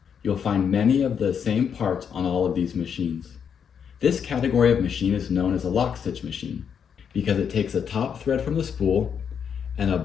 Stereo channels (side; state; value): right; quieter; 7.4 dB